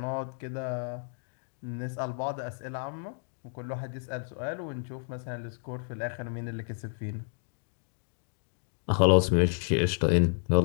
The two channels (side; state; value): right; silent; digital silence